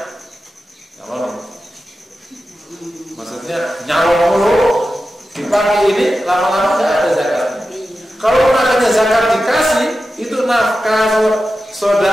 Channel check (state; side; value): normal; both; correlation 0.92